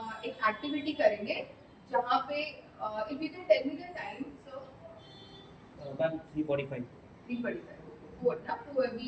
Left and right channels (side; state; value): both; identical; correlation 1.00